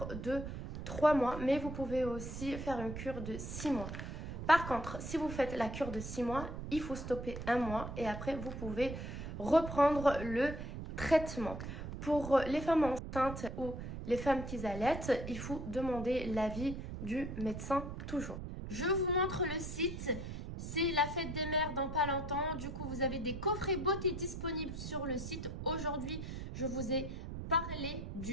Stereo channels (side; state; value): right; noise; rumble, 7 dB below the sound